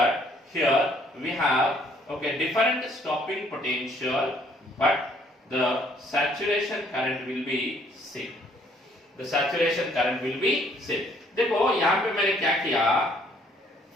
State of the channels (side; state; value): both; normal; correlation 0.63